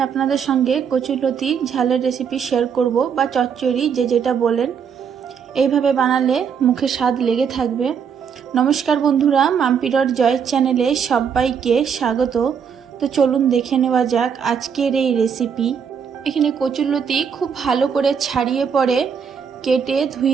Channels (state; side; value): quieter; left; 7.0 dB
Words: আপনাদের সঙ্গে কচুরলতি ঝালের রেসিপি শেয়ার করব বা চচ্চড়ি যে যেটা বলেন। এইভাবে বানালে মুখে স্বাদ লেগে থাকবে। নমস্কার বন্ধুরা, মাম্পিডর জয় চ্যানেলে সবাইকে স্বাগত। তো চলুন দেখে নেওয়া যাক আজকের এই রেসিপি। এখানে কচুরলতি খুব ভালো করে ছাড়িয়ে পরে কেটে